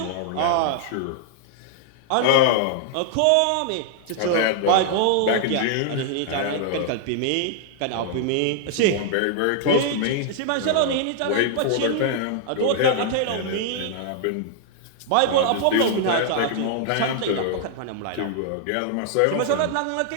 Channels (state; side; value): different; both; correlation -0.01